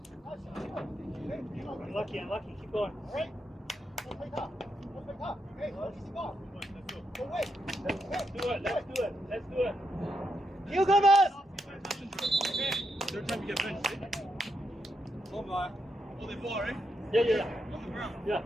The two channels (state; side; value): normal; both; correlation 0.82